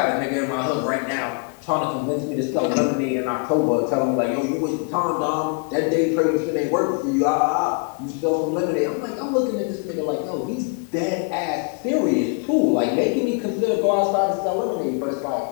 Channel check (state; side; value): quieter; right; 36.4 dB